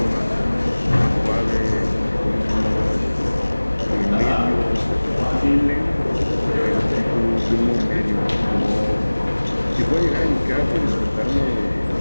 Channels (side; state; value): both; inverted; correlation -1.00